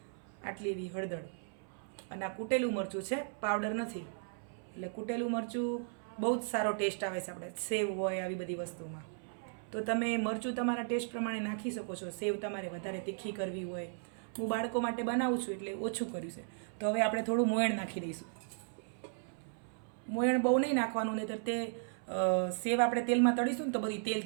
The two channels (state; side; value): silent; left; 54 dB below the other